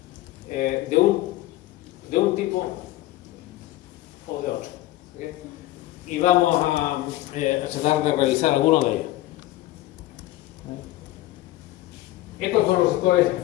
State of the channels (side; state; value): right; quieter; 16.0 dB